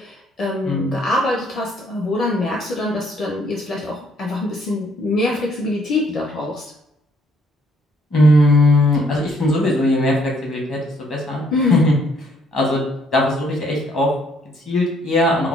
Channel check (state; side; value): normal; both; correlation 0.66